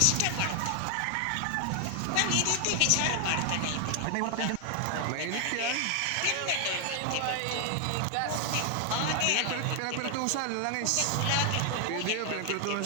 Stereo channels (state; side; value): different; both; correlation 0.00